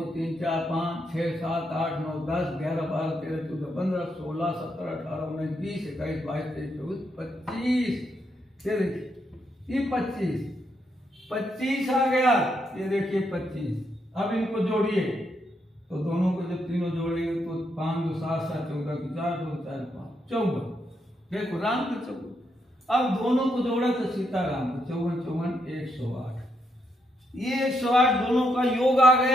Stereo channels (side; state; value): both; normal; correlation 0.78